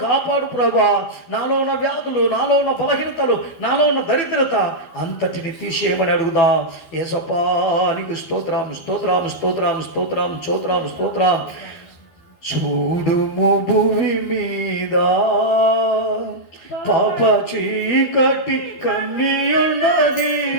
కాపాడు ప్రభా, నాలో ఉన్న వ్యాధులు, నాలో ఉన్న బలహీనతలు, నాలో ఉన్న దరిద్రత అంతటిని తీసేయమని అడుగుదా. యేసప్పా నీకు స్తోత్రం, స్తోత్రం, స్తోత్రం, స్తోత్రం, స్తోత్రం, స్తోత్రం. చూడుము భూమి మీద పాప చీకటి కమ్మియున్నది,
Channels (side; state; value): right; late; 12 ms